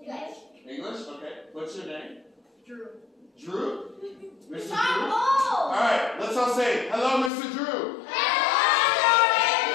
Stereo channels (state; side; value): drops out; right; at 7.3 s